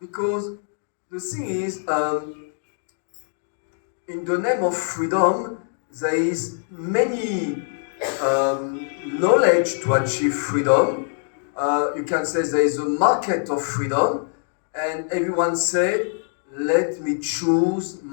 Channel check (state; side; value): silent; right; digital silence